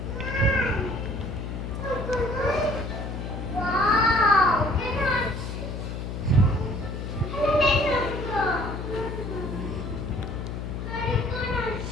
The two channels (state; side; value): noise; left; hum, 5 dB below the sound